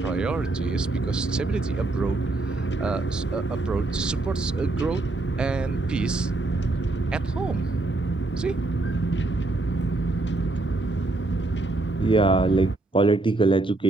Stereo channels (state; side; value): quieter; left; 3.0 dB